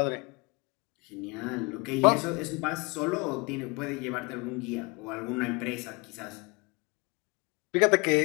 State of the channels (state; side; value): quieter; right; 29.4 dB